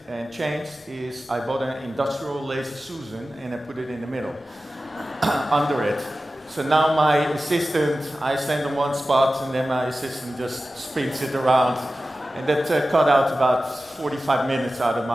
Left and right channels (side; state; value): both; normal; correlation 0.95